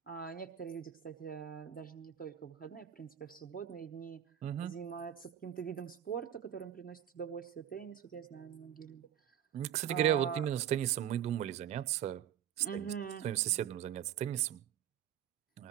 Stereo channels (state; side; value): quieter; left; 10.2 dB